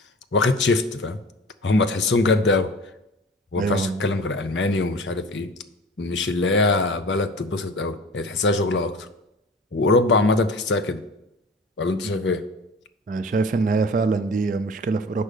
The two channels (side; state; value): both; normal; correlation 0.39